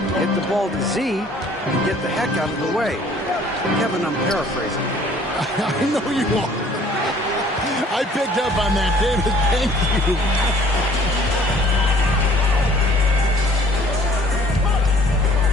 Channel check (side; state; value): both; normal; correlation 0.56